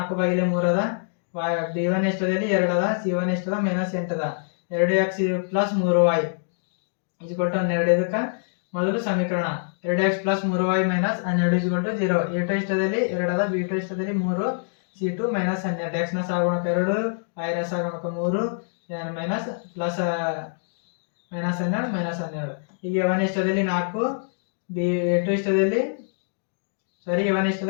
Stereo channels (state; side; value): silent; right; digital silence